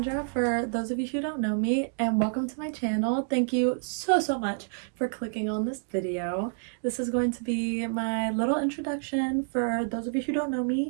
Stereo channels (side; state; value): left; silent; digital silence